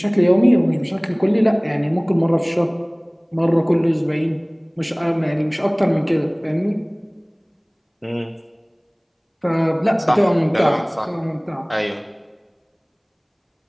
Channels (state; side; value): identical; both; correlation 1.00